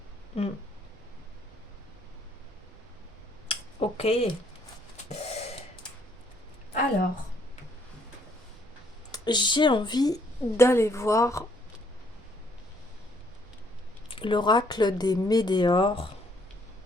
Mm. Ok. Alors, j'ai envie d'aller voir l'oracle des Médéors.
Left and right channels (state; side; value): normal; both; correlation 0.67